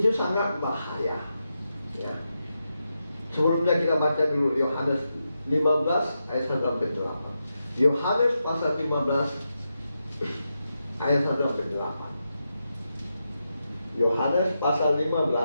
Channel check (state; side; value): inverted; both; correlation -0.87